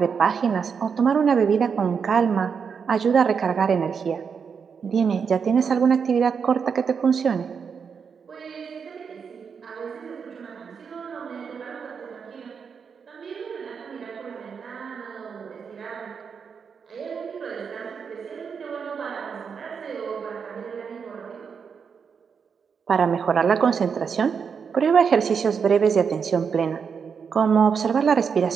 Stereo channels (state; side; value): quieter; left; 6.3 dB